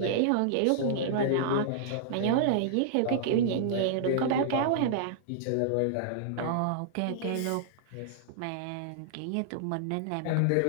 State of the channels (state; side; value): different; both; correlation -0.01